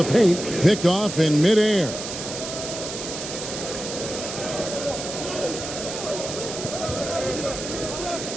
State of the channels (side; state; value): right; noise; hiss, 7 dB below the sound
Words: paint, picked off in midair.